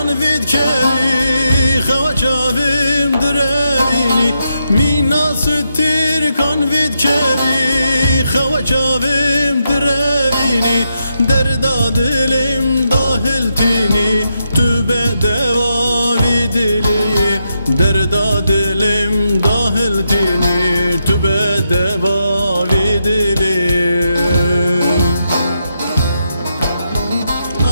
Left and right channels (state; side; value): inverted; both; correlation -0.83